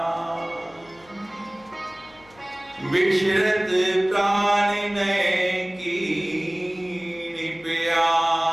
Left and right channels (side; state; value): left; noise; hum, 28 dB below the sound